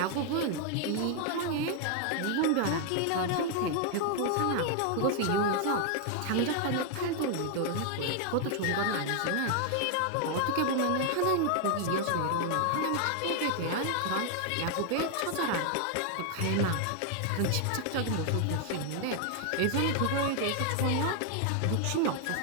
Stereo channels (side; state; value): both; different; correlation 0.00